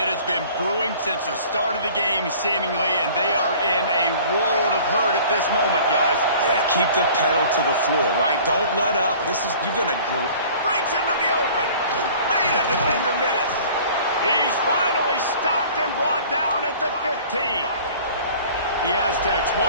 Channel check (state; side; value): inverted; both; correlation -0.48